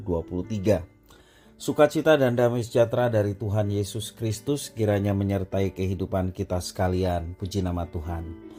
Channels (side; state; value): both; identical; correlation 1.00